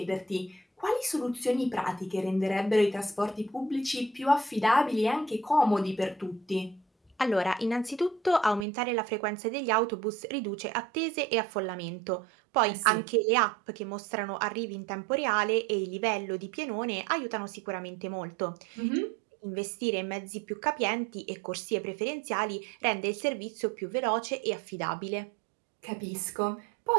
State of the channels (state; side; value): drops out; left; at 8.7 s